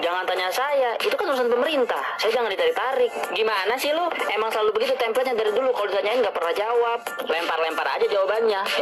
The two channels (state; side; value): identical; both; correlation 1.00